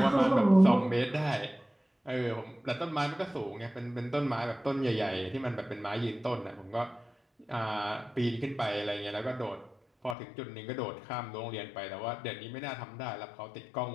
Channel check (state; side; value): drops out; right; at 10.2 s